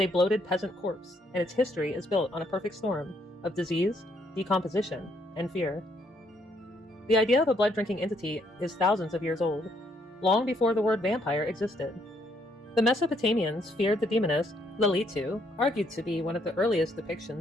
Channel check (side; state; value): both; normal; correlation 0.71